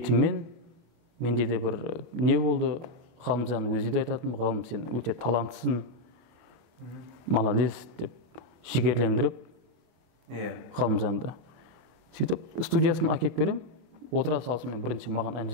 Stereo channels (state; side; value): late; left; 25 ms